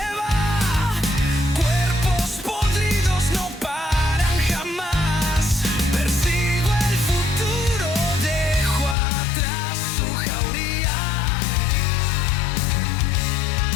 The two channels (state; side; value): drops out; right; at 9.0 s